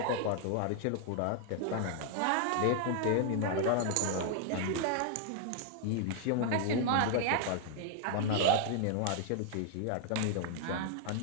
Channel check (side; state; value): both; different; correlation 0.00